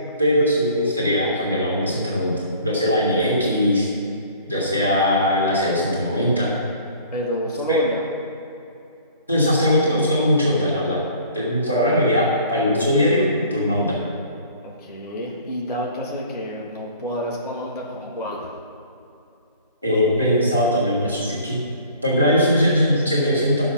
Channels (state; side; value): inverted; both; correlation -0.51